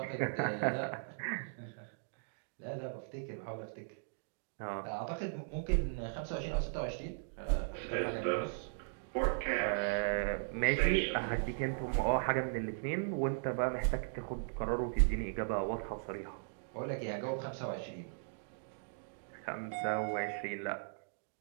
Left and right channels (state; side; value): silent; left; digital silence